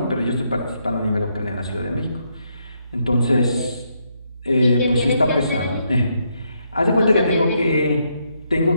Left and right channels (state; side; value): inverted; both; correlation -0.77